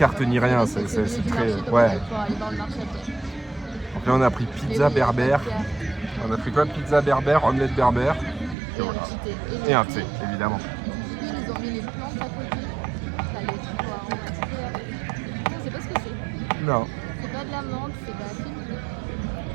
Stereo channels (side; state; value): left; drops out; at 8.6 s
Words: ni rien, c'est très... Ouais. Donc là, on a pris pizza berbère. On a pris quoi? Pizza berbère, omelette berbère. Et voilà. Et un thé, évidemment. Ils ont mis les plantes à côté. T'as les trucs aromatiques. Je sais pas ce que c'est. Non. C'est pas de la menthe, c'est de la fine.